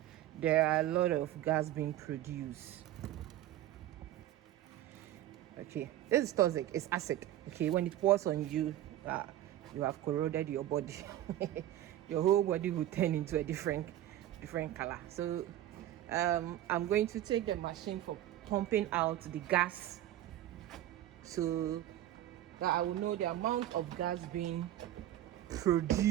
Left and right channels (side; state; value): left; quieter; 13.2 dB